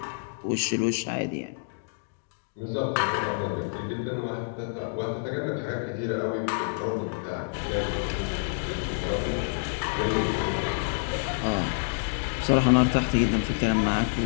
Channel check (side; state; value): right; silent; digital silence